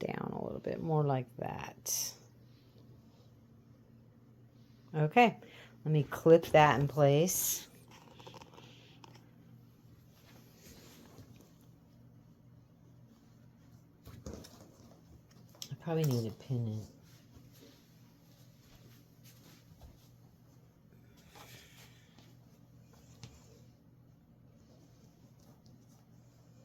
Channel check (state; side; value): identical; both; correlation 1.00